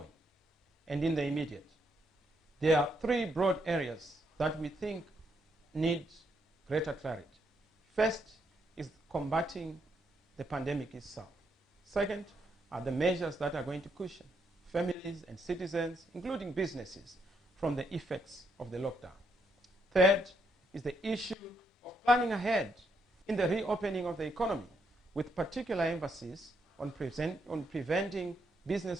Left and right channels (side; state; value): both; normal; correlation 0.76